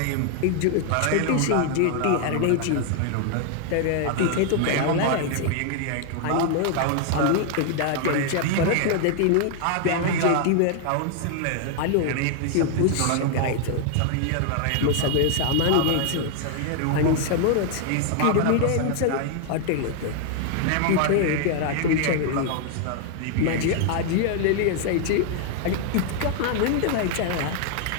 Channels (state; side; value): different; both; correlation 0.00